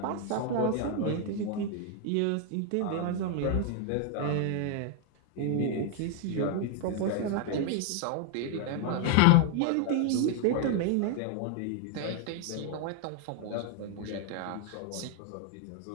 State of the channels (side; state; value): both; different; correlation 0.00